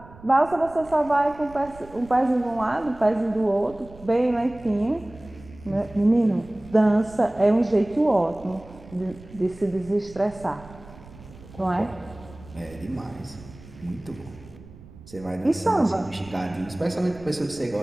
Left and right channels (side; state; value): right; noise; rumble, 20 dB below the sound